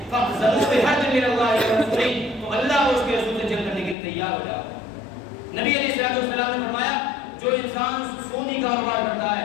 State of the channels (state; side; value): drops out; right; at 4.0 s